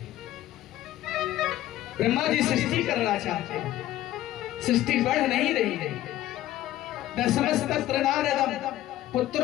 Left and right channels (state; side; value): quieter; right; 14.2 dB